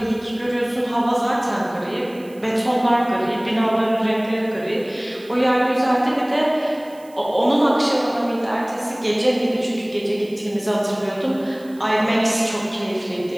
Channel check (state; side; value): noise; right; hiss, 26 dB below the sound